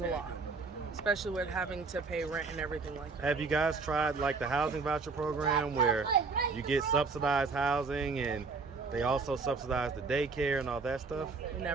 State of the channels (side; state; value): left; quieter; 4.5 dB